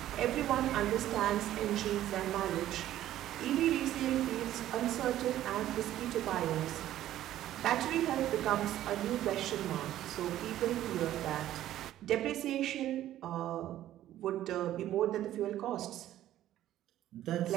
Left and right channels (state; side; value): quieter; left; 13.0 dB